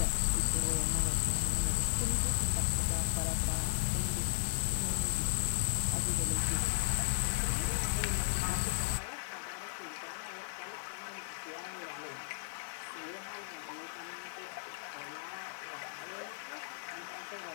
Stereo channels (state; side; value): silent; right; digital silence